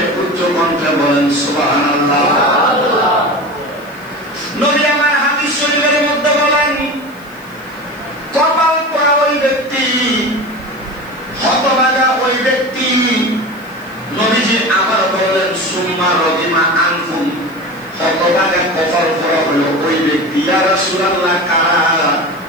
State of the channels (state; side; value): noise; left; hiss, 27 dB below the sound